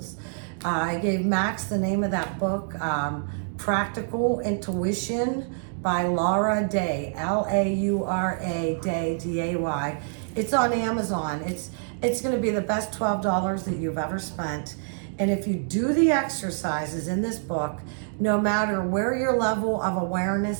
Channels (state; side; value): silent; left; digital silence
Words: I gave Max the name of that book, Practical Intuition by Laura Day, Laura Day, D-A-Y. It's on Amazon. It's going to be the best $12 that you've ever spent. And if you do the exercises in this book, no matter where your level of